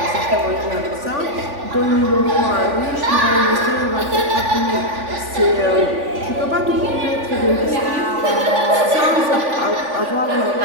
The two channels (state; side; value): late; left; 3.5 ms